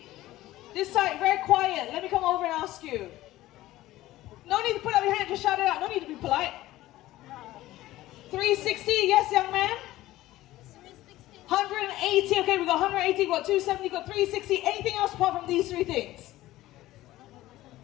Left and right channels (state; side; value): quieter; right; 16.1 dB